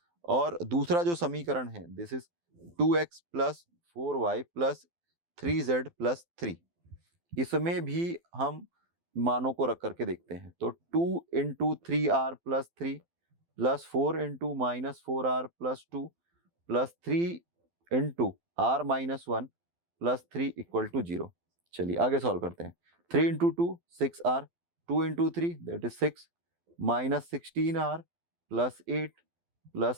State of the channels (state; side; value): late; left; 12 ms